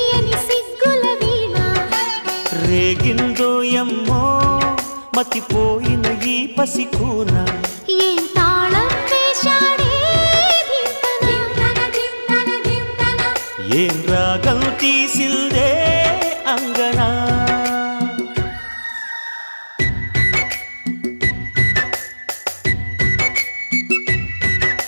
సిగ్గుల వీణ రేగిందో యమ్మో మతిపోయిన ఈ పసికూన ఏం తాళం వేశాడే ఏం రాగం తీసిందే అంగనా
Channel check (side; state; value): both; inverted; correlation -1.00